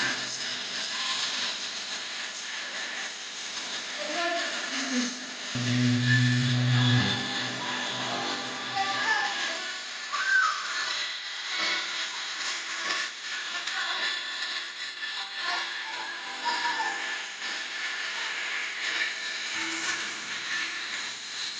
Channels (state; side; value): identical; both; correlation 1.00